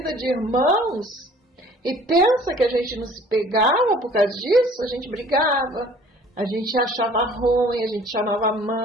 de irmãos. E pensa que a gente não se pegava por causa disso, a gente brigava, a gente achava ruim, a gente chamava a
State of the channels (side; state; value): both; normal; correlation 0.52